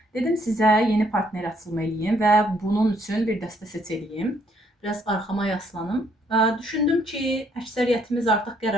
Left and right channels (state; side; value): normal; both; correlation 0.68